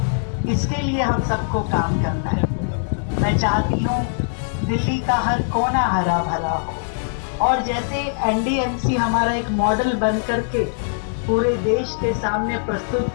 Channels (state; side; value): silent; right; digital silence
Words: इसके लिए हम सबको काम करना है। मैं चाहती हूँ दिल्ली का हर कोना हरा भरा हो, और जैसे एनडीएमसी हमारा एक मॉडल बन करके पूरे देश के सामने